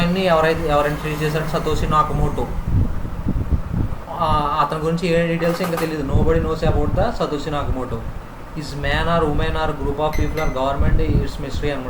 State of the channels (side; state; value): both; identical; correlation 1.00